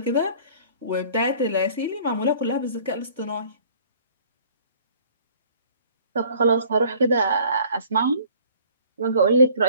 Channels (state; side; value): inverted; both; correlation -0.53